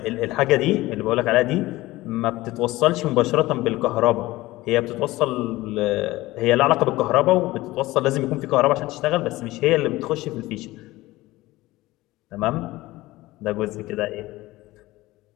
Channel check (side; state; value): right; quieter; 18.5 dB